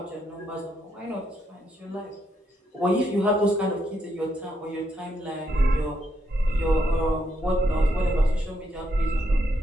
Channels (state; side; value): normal; both; correlation 0.78